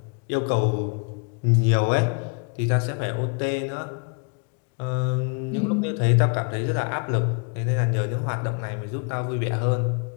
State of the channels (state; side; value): quieter; right; 36.3 dB